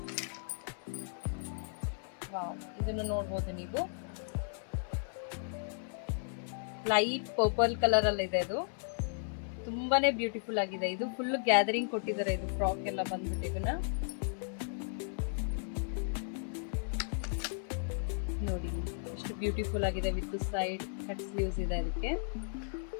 ವಾವ್, ಇದನ್ನು ನೋಡ್ಬೋದು ನೀವು, ಲೈಟ್ ಪರ್ಪಲ್ ಕಲರ್ ಅಲ್ಲಿ ಇದೆ. ಇದು ತುಂಬಾನೇ ಬ್ಯೂಟಿಫುಲ್ ಆಗಿದೆ. ಇದು ಫುಲ್ ಗ್ಯಾದರಿಂಗ್ ಕೊಟ್ಟಿದ್ದಾರೆ. ಇದು ಫ್ರಾಕ್ ಎಲ್ಲ ಬಂದ್ಬಿಟ್ಟು ಇದನ್ನ ನೋಡಿ ಎಷ್ಟು ಬ್ಯೂಟಿಫುಲ್ ಆಗಿದೆ. ವಿತ್ ಸೈಡ್ ಕಟ್ ಸ್ಲೀವ್ಸ್ ಇದೆ ಅದಕ್ಕೆ.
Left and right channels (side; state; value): right; silent; 54 dB below the other